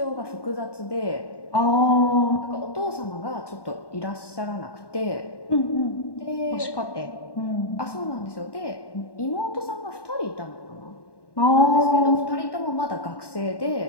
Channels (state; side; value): late; right; 1.1 ms